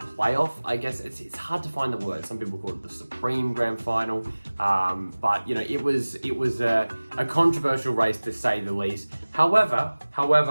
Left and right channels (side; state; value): both; inverted; correlation -1.00